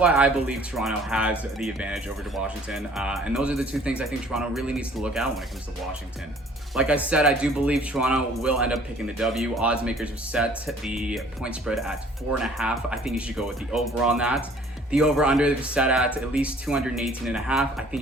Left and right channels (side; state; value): both; normal; correlation 0.55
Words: I believe Toronto has the advantage over to Washington. And those are the two things I think Toronto really needs to look at when it comes to Washington. Like I said, I do believe Toronto will end up picking the W. Odds makers have set the point spread at 4.5. I think you should go with the over on that. The over-under is set at least 218.5. I think